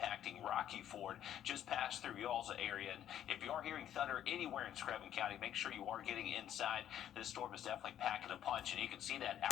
Rocky Ford, just past through y'all's area. And if you are hearing thunder anywhere in Screven County, make sure you are getting inside. This storm is definitely packing a punch, and you can see that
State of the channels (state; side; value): quieter; right; 10.8 dB